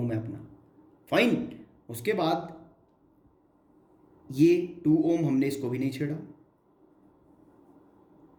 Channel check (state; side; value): identical; both; correlation 1.00